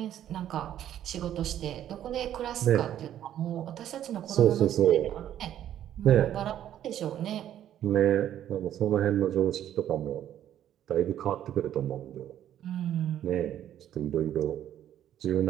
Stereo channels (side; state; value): left; quieter; 11.1 dB